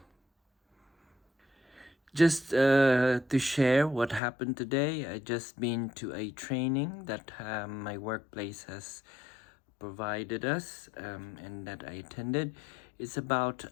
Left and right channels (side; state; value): right; drops out; at 4.2 s